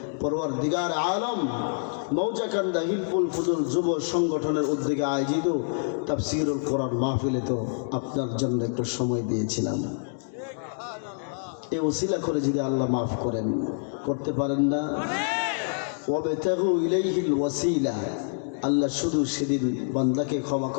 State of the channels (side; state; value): right; silent; digital silence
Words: পরওয়ারদিগার আলম মৌজাকান্দা হিলফুল ফুজুল যুব সংগঠনের উদ্যোগে আয়োজিত তাফসিরুল কোরআন মাহফিলে তো আপনার জন্য একটু সময় দিয়েছিলাম। এ ওসিলা করে যদি আল্লাহ মাফ করেন, করতে পারেন না? ওয়াবতাগু ইলাইহিল ওয়াসিলা, আল্লাহ শুধু সেদিন বান্দাকে ক্ষমা